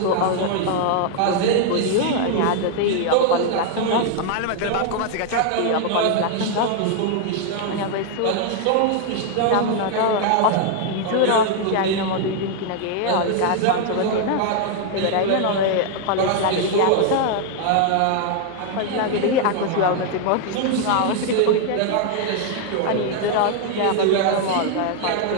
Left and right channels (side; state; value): both; different; correlation 0.00